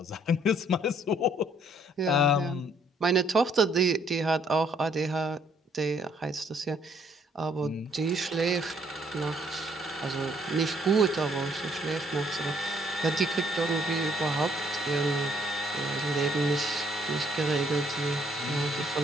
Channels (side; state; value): both; normal; correlation 0.66